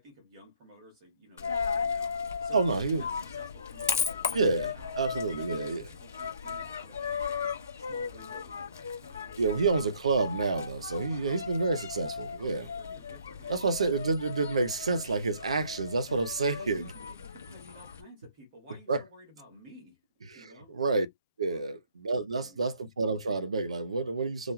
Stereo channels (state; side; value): inverted; both; correlation -0.64